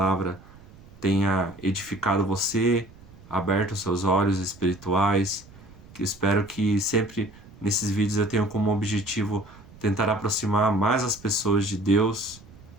tenha edificado você, aberto os seus olhos espirituais, que espero que sempre nesses vídeos eu tenha como objetivo tentar aproximar mais as pessoas de Deus.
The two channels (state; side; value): noise; right; rumble, 22 dB below the sound